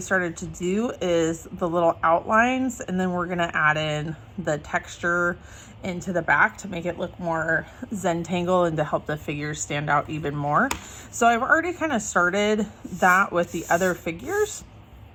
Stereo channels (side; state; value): both; identical; correlation 1.00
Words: to do, is the little outlines, and then we're going to add in the texture into the back to make it look more Zentangle and to help the figures stand out even more. So I've already kind of started that with the other figures,